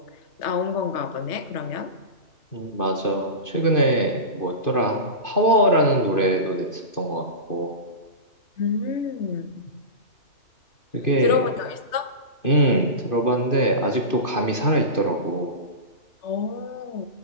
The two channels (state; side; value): late; right; 2.5 ms